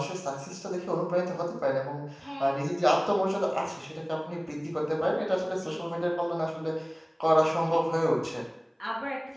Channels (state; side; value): identical; both; correlation 1.00